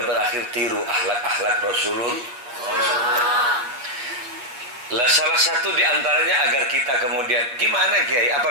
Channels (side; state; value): left; late; 8.1 ms